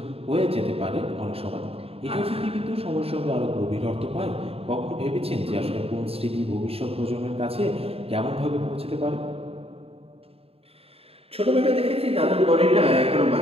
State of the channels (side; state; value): left; late; 0.28 ms